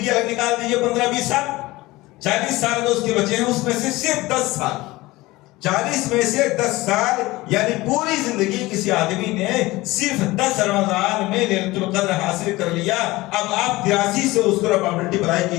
الگ نکال دیجئے 15-20 سال، 40 سال جو اس کے بچے ہیں اس میں سے صرف 10 سال، 40 میں سے 10 سال یعنی پوری زندگی کسی آدمی نے صرف 10 رمضان میں لیلۃ القدر حاصل کر لیا۔ اب آپ 83 سے اس کو پرابلٹی بڑھائی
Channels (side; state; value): right; quieter; 19.8 dB